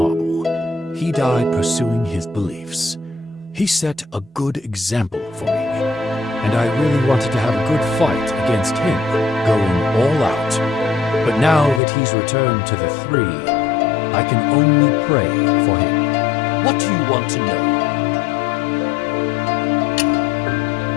He died pursuing his beliefs. He set a good example for me, and I really wanted to have a good fight against him, going all out. But now that he's returned to the Three, I can only pray for him. What do you want to know?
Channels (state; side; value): drops out; right; at 11.8 s